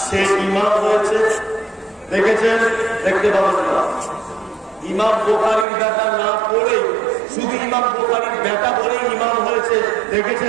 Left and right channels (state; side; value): drops out; left; at 5.7 s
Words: সে ইমাম হয়েছে? দেখেছেন? দেখতে পাবেন না। ইমাম বুখারীর বেটা না পড়ে শুধু ইমাম বুখারীর বেটা বলে ইমাম হয়েছে,